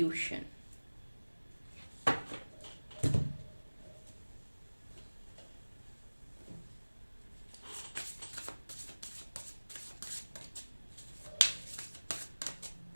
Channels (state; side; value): inverted; both; correlation -1.00